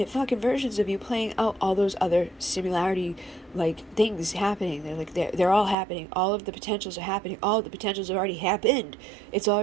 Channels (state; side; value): drops out; left; at 5.8 s